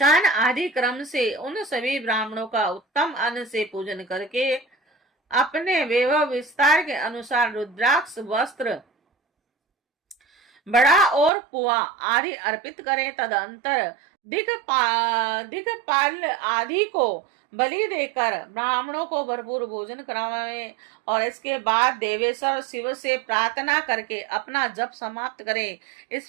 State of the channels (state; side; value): drops out; left; at 11.3 s